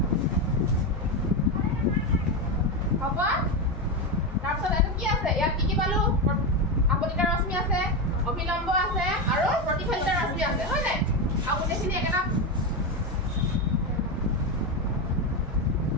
হ'ব তাৰপিছত এইটো কি আছে ইয়াত কি পালো আপতিত ৰশ্মি আছে অভিলম্ব আছে আৰু প্ৰতিফলিত ৰশ্মি আছে হয় নাই আৰু গোটেইখিনি একেটা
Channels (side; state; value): both; normal; correlation 0.12